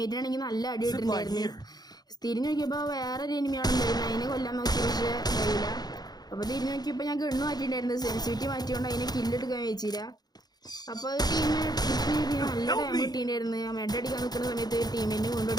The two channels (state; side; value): late; right; 0.19 ms